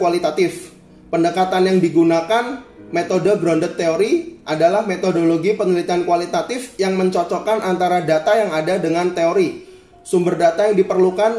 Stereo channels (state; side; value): identical; both; correlation 1.00